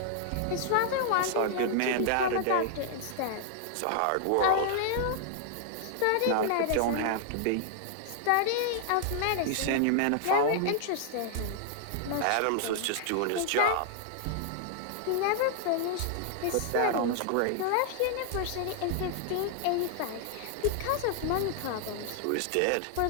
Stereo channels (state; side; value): different; both; correlation -0.01